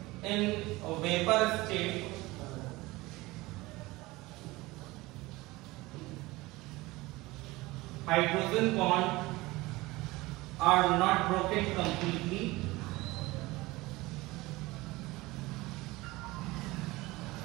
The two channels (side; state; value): left; quieter; 20.7 dB